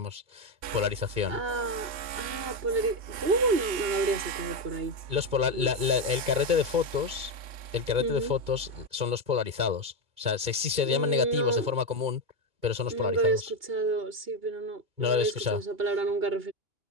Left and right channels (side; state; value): left; late; 2.2 ms